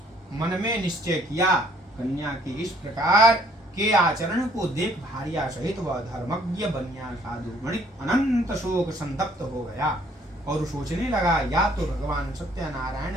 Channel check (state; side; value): normal; both; correlation 0.62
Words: मन में निश्चय किया। कन्या के इस प्रकार के आचरण को देख भार्या सहित वह धर्मज्ञ बनिया साधु वणिक अनंत शोक संतप्त हो गया और सोचने लगा, या तो भगवान